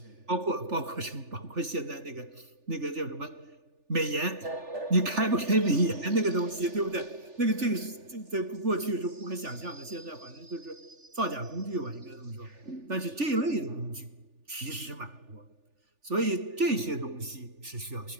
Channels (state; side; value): late; left; 3.4 ms